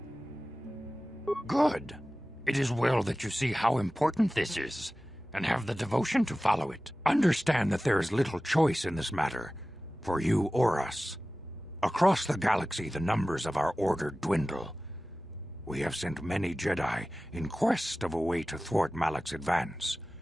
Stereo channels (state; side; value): normal; both; correlation 0.96